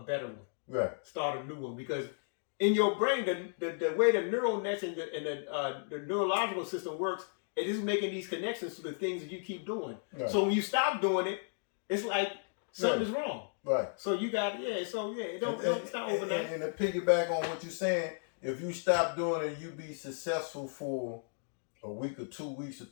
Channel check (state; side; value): silent; right; digital silence